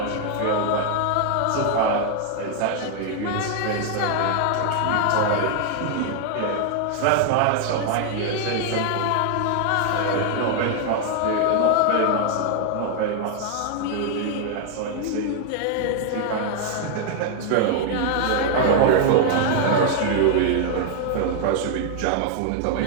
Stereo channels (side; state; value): both; different; correlation 0.00